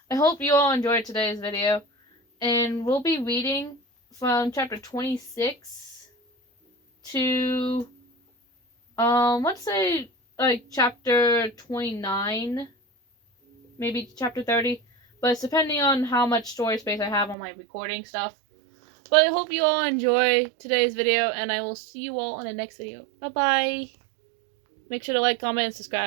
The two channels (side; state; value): left; drops out; at 17.4 s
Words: I hope you all enjoyed today's video. And we'll be reading from chapter 26 to, let's say, like, chapter 29. Maybe chapter 30. But it's depending on how much storage space I have on my recording stuff. But I hope you all enjoy today's video, and I will see you all in the next video. Bye-bye! Make sure to like, comment, and